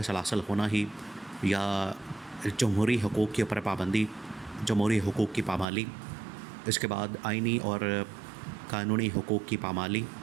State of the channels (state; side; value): drops out; left; at 5.7 s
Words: سلاسل ہونا ہی، یا جمہوری حقوق کے اوپر پابندی، جمہوری حقوق کی پامالی، اس کے بعد آئینی اور قانونی حقوق کی پامالی،